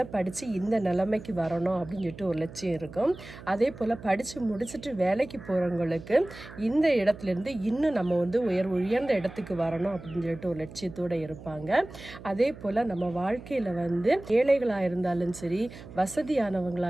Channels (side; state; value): right; noise; hum, 16 dB below the sound